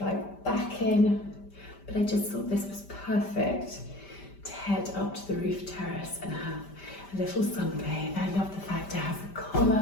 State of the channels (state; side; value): late; right; 5.1 ms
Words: back in, but I just thought this was perfect to head up to the roof terrace and have a little sunbathe. I love the fact it has a